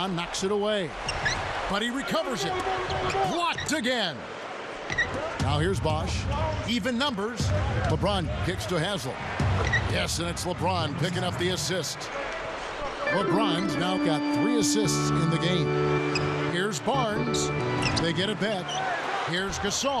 knocks it away. But he recovers it. Blocked again. Now here's Bosch. Even numbers. LeBron kicks to Haslam. Yes, and it's LeBron picking up the assist. LeBron's now got 3 assists in the game. Here's Barnes. They get it back. Here's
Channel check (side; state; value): both; identical; correlation 1.00